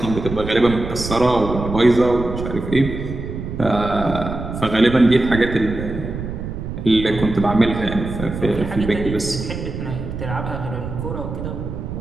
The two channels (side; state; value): right; noise; rumble, 7 dB below the sound